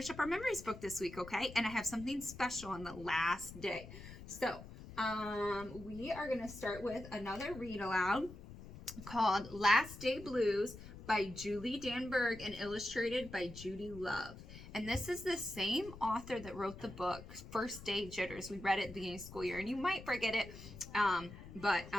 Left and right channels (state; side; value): noise; left; rumble, 14 dB below the sound